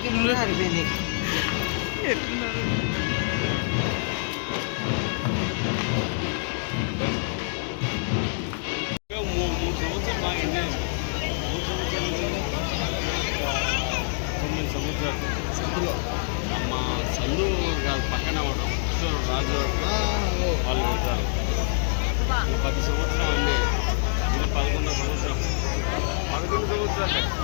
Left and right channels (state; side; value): silent; right; digital silence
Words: ముందు సరిపోయింది. మా సందు పక్కన రాజు వాళ్ళు పెట్టారు. 10 సంవత్సరం అన్నీ 11వ సంవత్సరం 11 సంవత్సరాలు.